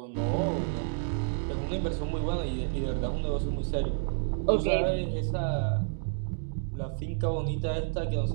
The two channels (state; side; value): silent; left; digital silence